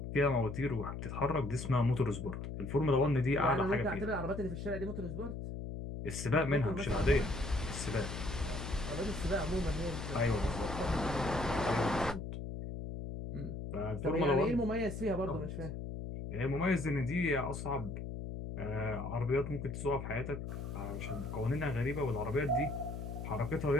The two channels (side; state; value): left; noise; hum, 6 dB below the sound